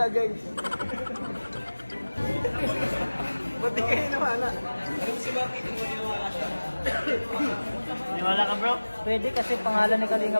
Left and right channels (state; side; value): inverted; both; correlation -1.00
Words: guys. Ba't di kayo niniwala? Si Bakit kung niniwala siya? Niwala ka, bro? Pwede kasi pangalan ni